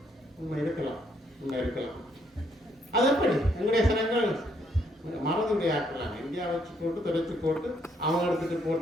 உண்மை இருக்கலாம். அது எப்படி எங்களுடைய சனங்கள் மறந்துடைய ஆக்கலாம், இந்தியா வச்சு போட்டு தொடச்சு போட்டு அவங்க எடுத்துட்டு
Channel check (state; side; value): normal; both; correlation 0.71